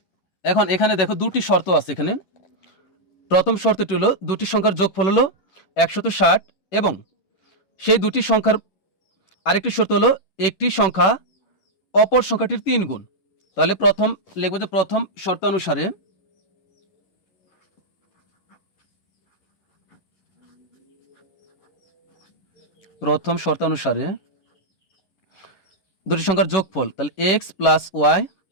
এখানে দেখো দুটি শর্ত আছে। এখানে প্রথম শর্তটি হলো দুটি সংখ্যার যোগফল হলো 160 এবং সেই দুটি সংখ্যার আরেকটি শর্ত হলো একটি সংখ্যা অপর সংখ্যাটির 3 গুণ। তাহলে প্রথম লিখব যে প্রথম শর্তানুসারে দুটি সংখ্যার যোগফল, তাহলে এক্স প্লাস ওয়াই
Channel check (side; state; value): right; late; 10 ms